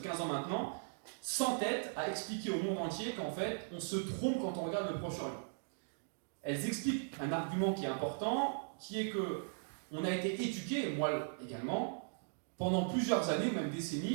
15 ans maintenant, s'entêtent à expliquer au monde entier qu'en fait, on se trompe quand on regarde le Proche-Orient. Elles expliquent un argument qui est important, qui est que on a été éduqué, et moi également, pendant plusieurs années, même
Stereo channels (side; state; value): left; silent; digital silence